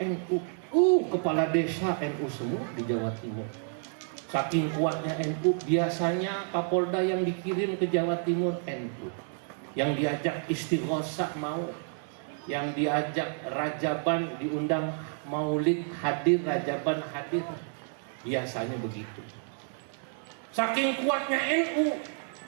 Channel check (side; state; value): left; silent; 57 dB below the other